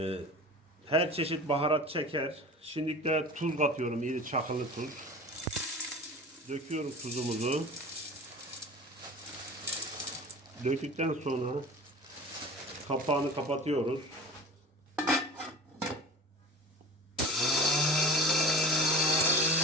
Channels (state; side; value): normal; both; correlation 0.37